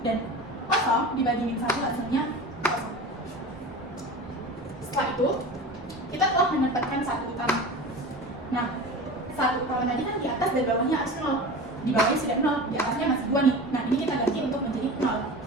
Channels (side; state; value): both; normal; correlation 0.33